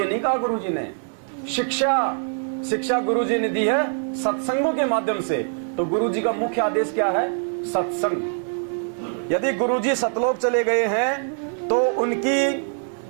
नहीं कहा गुरुजी ने, शिक्षा गुरुजी ने दी है सत्संगों के माध्यम से। तो गुरुजी का मुख्य आदेश क्या है? सत्संग। यदि गुरुजी सतलोक चले गए हैं तो उनकी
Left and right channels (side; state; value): left; silent; 58 dB below the other